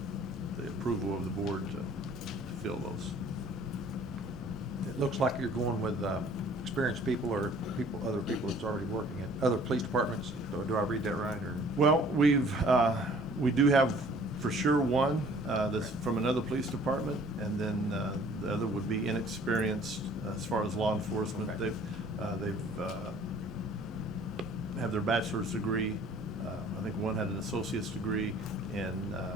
the approval of the board to fill those. It looks like you're going with experienced people or other people that's already working at other police departments. Do I read that right, or? Well, we do have for sure one that's from another police department, and then the other would be inexperienced as far as law enforcement. Okay. They've have their bachelor's degree. I think one had an associate's degree in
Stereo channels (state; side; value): normal; both; correlation 0.53